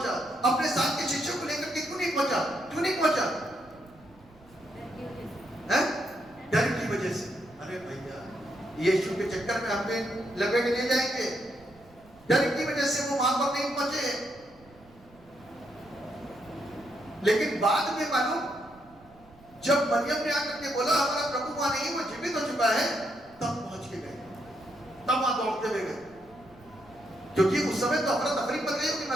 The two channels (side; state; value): right; noise; rumble, 26 dB below the sound